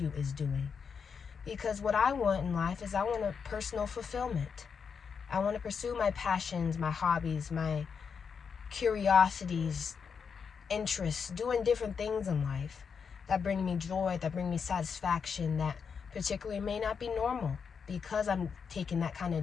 is doing. Because what I want in life is I want a personal fulfillment. I want to pursue my passions, my hobbies, my curiosities, interests, doing different things in life that bring me joy, that bring me satisfaction, that particularly may not be normal, because I'm taking that kind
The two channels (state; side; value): quieter; right; 6.2 dB